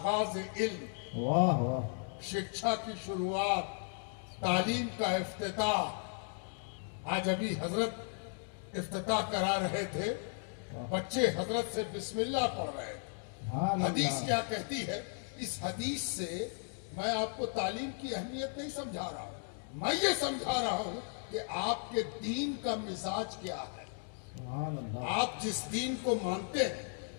علم، واہ واہ، شکشا کی شروعات، تعلیم کا افتتاح۔ آج ابھی حضرت افتتاح کرا رہے تھے، بچے حضرت سے بسم اللہ پڑھ رہے تھے۔ سبحان حدیث اللہ، کیا کہتی ہے؟ اس حدیث سے میں آپ کو تعلیم کی اہمیت نہیں سمجھا رہا ہوں، میں یہ سمجھا رہا ہوں کہ آپ کے دین کا مزاج کیا ہے، سبحان اللہ، آپ جس دین کو مانتے ہیں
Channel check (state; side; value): silent; right; 54 dB below the other